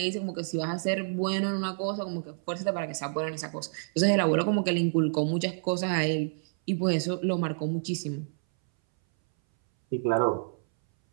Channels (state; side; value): silent; left; 59 dB below the other